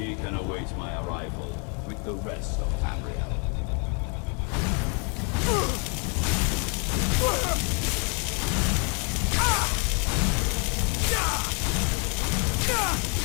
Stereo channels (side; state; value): right; quieter; 37.7 dB